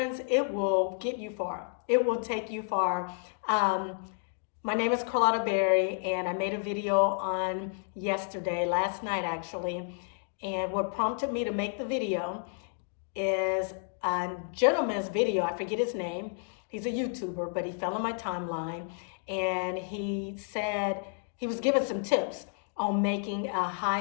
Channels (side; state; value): right; silent; 57 dB below the other